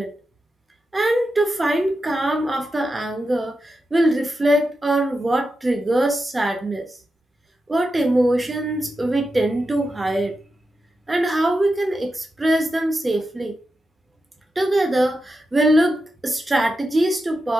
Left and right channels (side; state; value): both; normal; correlation 0.89